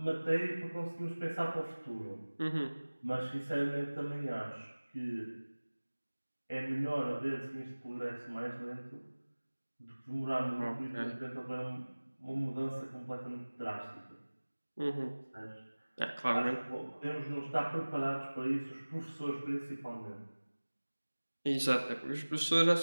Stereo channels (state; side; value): inverted; both; correlation -1.00